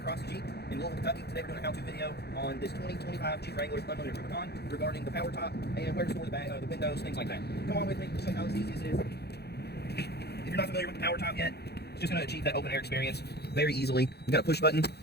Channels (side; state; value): right; late; 0.48 ms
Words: Cross Jeep in Louisville, Kentucky. Today we're doing a how-to video on this 2025 Jeep Wrangler Unlimited Rubicon regarding the power top and where to store the windows, things like that. Come on with me, show you how easy this is. If you're not familiar with the power top yet, it's just going to achieve that open air experience very easily. You've got a push button